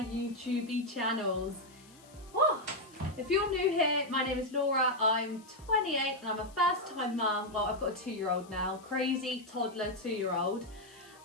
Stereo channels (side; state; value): left; noise; hiss, 25 dB below the sound